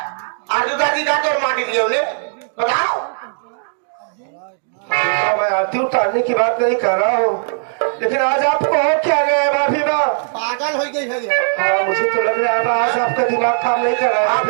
मैं आरती उतारने की बात नहीं कर रहा हूँ, लेकिन आज आपको हो क्या गया है भाभी माँ? पागल हो गई है। हाँ मुझे तो लग रहा है आज आपका दिमाग काम नहीं कर रहा है।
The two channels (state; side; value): silent; left; digital silence